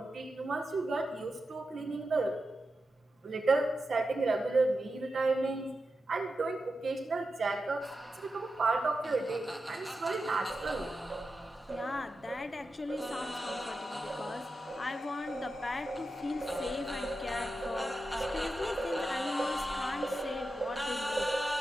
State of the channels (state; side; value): normal; both; correlation 0.90